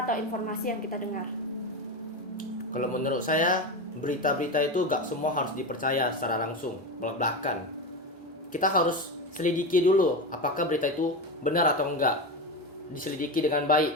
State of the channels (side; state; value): both; normal; correlation 0.19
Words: atau informasi yang kita dengar. Kalau menurut saya berita-berita itu gak semua harus dipercaya secara langsung belak-belakan. Kita harus selidiki dulu apakah berita itu benar atau enggak. Diselidiki dengan